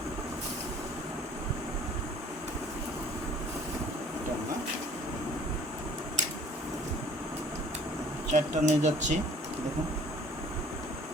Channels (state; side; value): normal; both; correlation 0.52